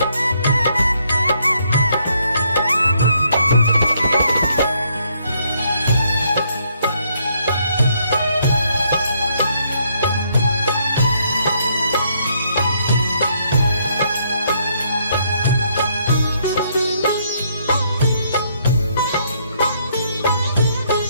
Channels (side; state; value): both; inverted; correlation -0.71